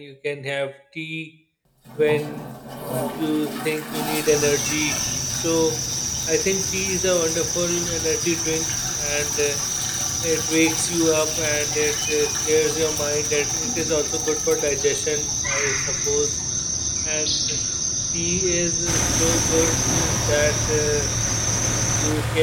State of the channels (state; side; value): identical; both; correlation 1.00